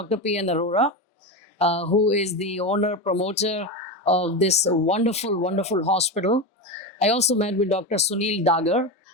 P.N. Arora, who is the owner, promoter of this wonderful, wonderful hospital. I also met with Dr. Sunil Dagar.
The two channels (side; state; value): both; normal; correlation 0.18